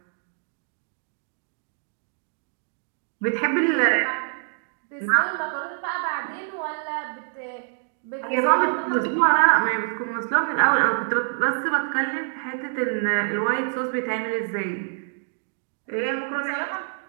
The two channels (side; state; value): left; silent; digital silence